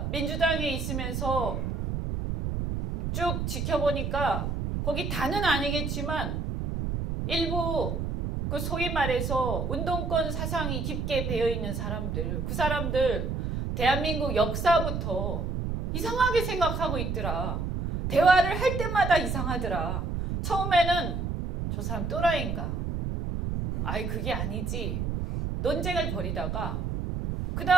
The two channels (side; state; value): right; noise; rumble, 2 dB below the sound